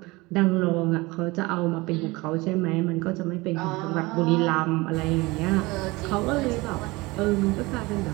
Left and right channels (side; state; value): left; quieter; 22.6 dB